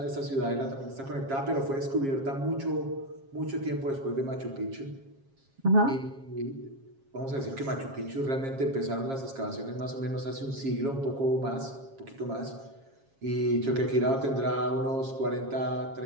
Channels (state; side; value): late; left; 7.4 ms